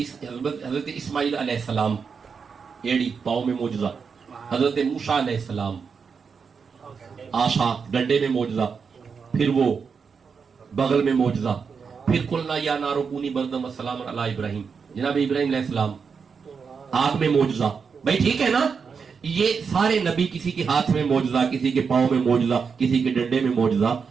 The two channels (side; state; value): left; quieter; 5.8 dB